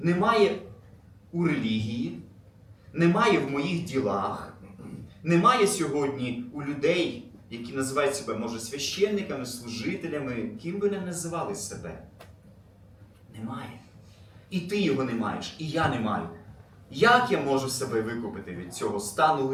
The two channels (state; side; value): identical; both; correlation 1.00